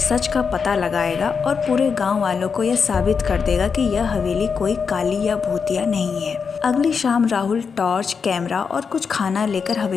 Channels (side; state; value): right; quieter; 5.8 dB